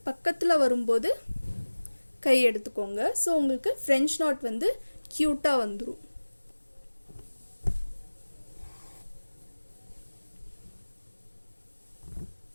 பக்கத்தில் வரும்போது கை எடுத்துக்கோங்க. ஸோ உங்களுக்கு ஃப்ரெஞ்ச் நாட் வந்து க்யூட்டாக வந்துடும்.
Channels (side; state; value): both; inverted; correlation -1.00